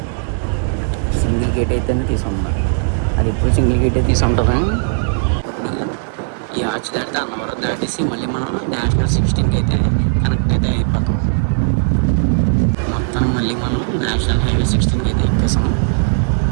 సింగిల్ గేట్ అయితేనే తీసుకుంటాం. అది ఎప్పుడు సింగిల్ గేటే తీసుకుంటాం. ఇప్పుడు ఈ ఆర్చ్ దాటితే అన్నవరం దాటేసి మళ్ళీ మనం నేషనల్ 16కి అయితే కనెక్ట్ అయితే అయిపోతాం. మొత్తం మళ్ళీ మనం నేషనల్ హైవే 16కి అయితే ఎక్కేసాం.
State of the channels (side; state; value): left; silent; 59 dB below the other